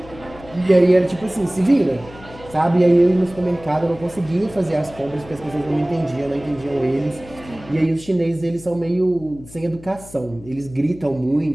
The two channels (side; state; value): left; noise; hum, 19 dB below the sound